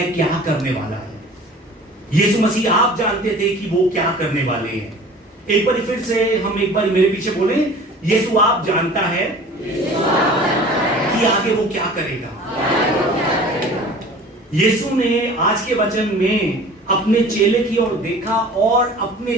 क्या करने वाला है। यीशु मसीह आप जानते थे कि वो क्या करने वाले हैं। एक बार फिर से हम एक बार मेरे पीछे बोले, यीशु आप जानता है कि आगे वो क्या करेगा। यीशु ने आज के वचन में अपने चेले की ओर देखा और अपने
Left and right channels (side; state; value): both; normal; correlation 0.44